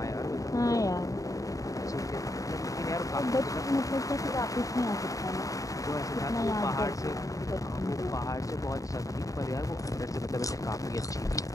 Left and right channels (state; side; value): late; right; 0.16 ms